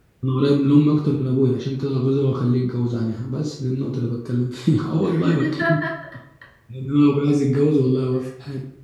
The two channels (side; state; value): both; identical; correlation 1.00